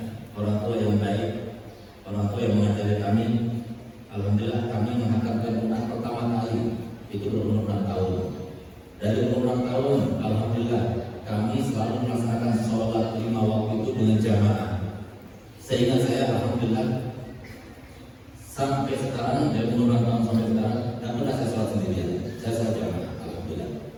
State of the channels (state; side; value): identical; both; correlation 1.00